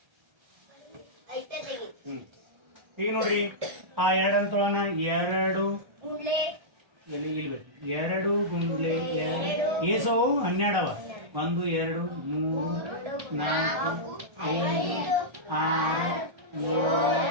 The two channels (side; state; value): left; late; 1.3 ms